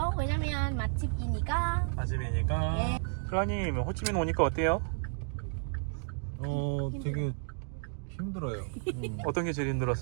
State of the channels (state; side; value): silent; left; 56 dB below the other